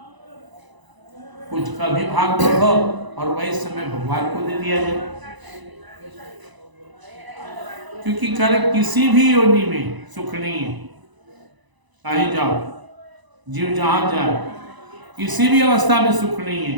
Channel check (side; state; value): left; late; 1.0 ms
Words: कुछ कभी भाग बढ़ो और वही समय भगवान को दे दिया जाए। क्योंकि कर किसी भी योनि में सुख नहीं है, कहीं जाओ, जीव जहां जाए, किसी भी अवस्था में सुख नहीं